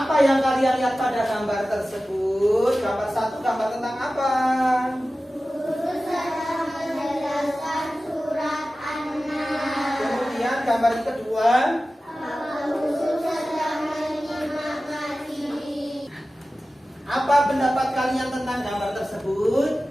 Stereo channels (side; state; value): both; normal; correlation 0.95